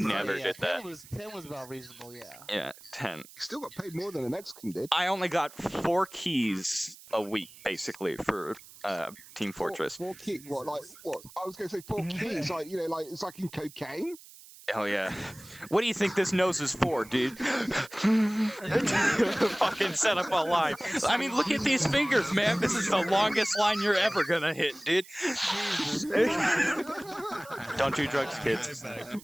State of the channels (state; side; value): noise; right; hiss, 20 dB below the sound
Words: did that. 10 was about reasonable, yeah. Yeah, 10. You still got paid more than a Mexican did. I only got 4 keys a week basically for Team Fortress. Four keys. What? Like what? I was going to say 4 keys. Like like it's like in cocaine. Oh yeah. What do you think this nose is for, dude? Fucking set up a line. I mean, look at these fingers, man. This is the longest line you're ever gonna hit, dude. Don't do drugs, kids. Here's